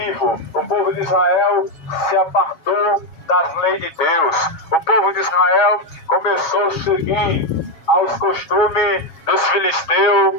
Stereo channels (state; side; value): late; right; 7.3 ms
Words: O povo de Israel se apartou das leis de Deus. O povo de Israel começou a seguir aos costumes dos